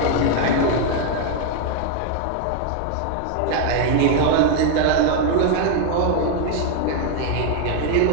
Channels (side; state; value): both; different; correlation 0.00